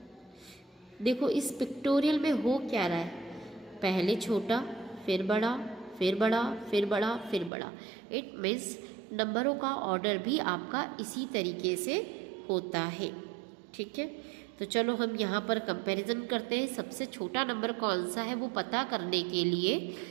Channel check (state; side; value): drops out; left; at 7.5 s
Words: देखो इस पिक्टोरियल में हो क्या रहा है, पहले छोटा, फिर बड़ा, फिर बड़ा, फिर बड़ा, फिर बड़ा। इट मीन्स नंबरों का ऑर्डर भी आपका इसी तरीके से होता है। ठीक है, तो चलो हम यहाँ पर कंपैरिजन करते हैं। सबसे छोटा नंबर कौन सा है वो पता करने के लिए